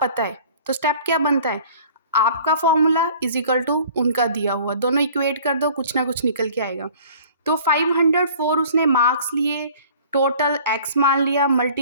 है, तो स्टेप क्या बनता है, आपका फॉर्मूला इज इक्वल टू उनका दिया हुआ, दोनों इक्वेट कर दो, कुछ ना कुछ निकल के आएगा। तो 504 उसने मार्क्स लिए, टोटल x मान लिया,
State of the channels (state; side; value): inverted; both; correlation -0.49